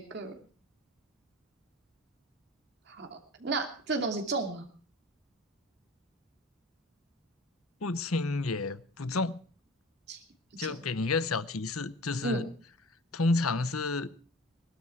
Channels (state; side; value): normal; both; correlation 0.40